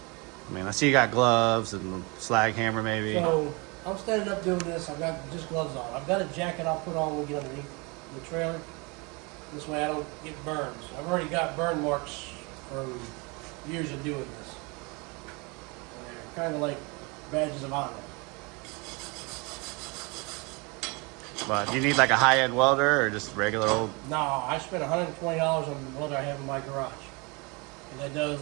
I mean, I see you got gloves and slag hammer maybe. So I'm standing up doing this. I've got just gloves on. I've got a jacket I'll put on when we get underneath the trailer. This way I don't get burns. I've already got burn marks from years of doing this. And they're kind of like badges of honor. But do you need like a high-end welder or just regular old? No, I spent $120 on the welder I have in my garage. And that does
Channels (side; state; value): left; quieter; 28.9 dB